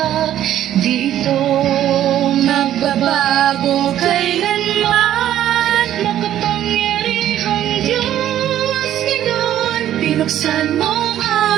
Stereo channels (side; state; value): left; quieter; 11.9 dB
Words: Dito magbabago kailanman. Makapangyarihang Diyos, ngayon pinuksan mo ang